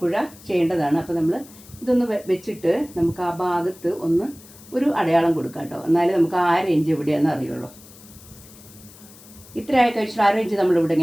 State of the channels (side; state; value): left; noise; hiss, 21 dB below the sound